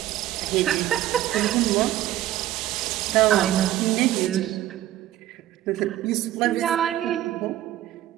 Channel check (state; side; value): quieter; left; 13.7 dB